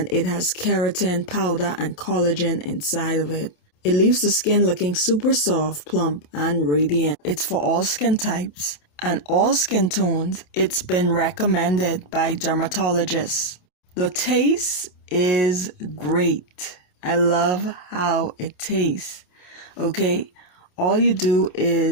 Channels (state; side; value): late; right; 28 ms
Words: it has keratin powder and collagen inside of it. It leaves the skin looking super soft, plump, and radiant. It's for all skin types and all skin tones. It's been recommended by dermatologists. The taste is great. I love how it tastes. Okay, all you do